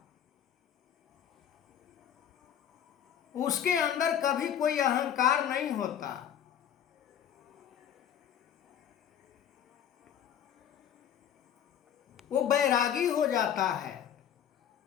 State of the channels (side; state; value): right; quieter; 9.5 dB